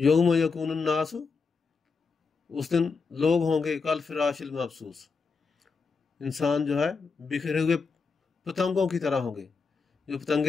یکون الناس، اس دن لوگ ہوں گے کالفراش المبثوث، انسان جو ہے بکھرے ہوئے پتنگوں کی طرح ہوں گے، جو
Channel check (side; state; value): right; quieter; 4.8 dB